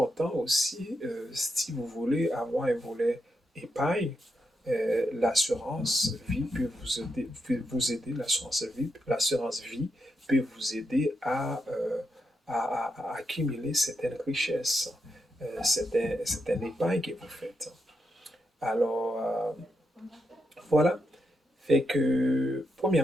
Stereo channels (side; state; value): both; normal; correlation 0.83